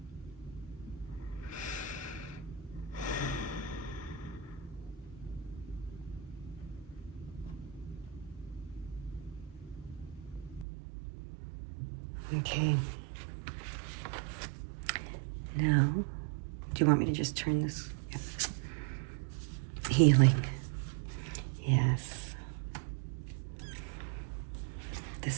Okay. Now, do you want me to just turn this? Yeah. Healing. Yes.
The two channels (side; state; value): left; drops out; at 10.7 s